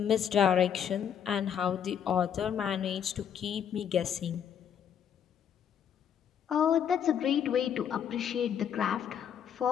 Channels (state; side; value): quieter; right; 8.6 dB